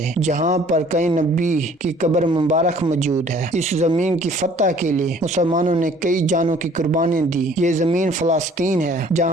जहाँ पर कई नबी की कब्र मुबारक मौजूद है। इस ज़मीन की फतह के लिए मुसलमानों ने कई जानों की कुर्बानी दी। ये ज़मीन फ़लस्तीन है,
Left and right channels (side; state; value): both; normal; correlation 0.55